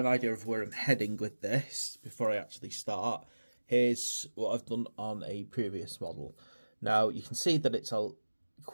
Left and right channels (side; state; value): both; inverted; correlation -1.00